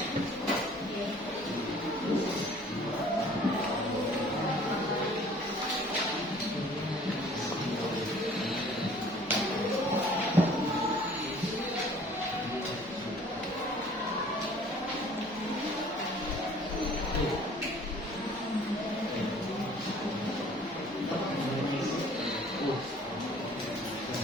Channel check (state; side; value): normal; both; correlation 0.52